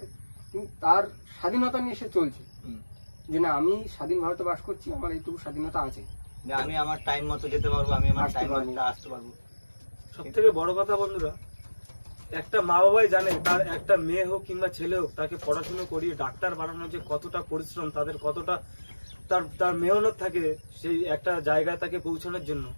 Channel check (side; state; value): both; inverted; correlation -1.00